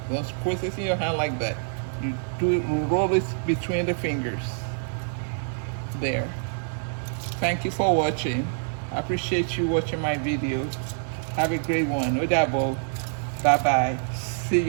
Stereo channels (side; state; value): left; silent; digital silence